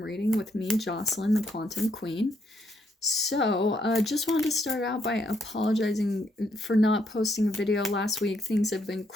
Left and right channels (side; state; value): both; normal; correlation 0.74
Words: reading with me, Jocelyn, the Quantum Queen. So, just wanted to start out by apologizing for not posting a video last week. Things have been